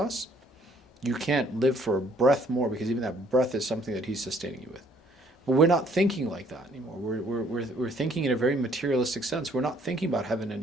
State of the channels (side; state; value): both; normal; correlation 0.62